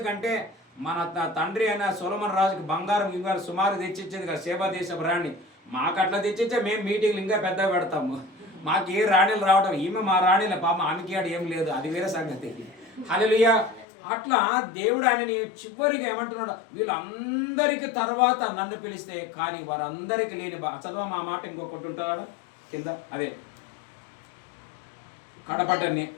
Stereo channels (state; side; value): drops out; right; at 13.9 s